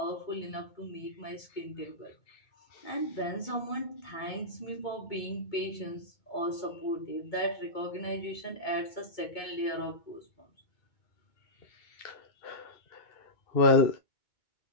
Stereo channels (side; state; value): right; late; 2.2 ms